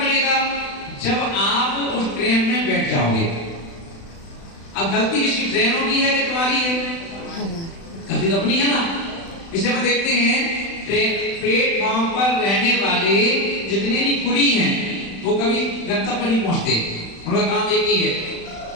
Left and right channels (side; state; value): right; late; 36 ms